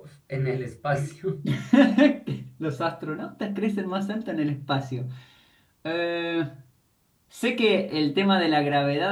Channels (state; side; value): identical; both; correlation 1.00